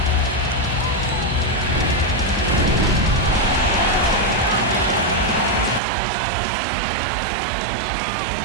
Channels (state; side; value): drops out; left; at 5.8 s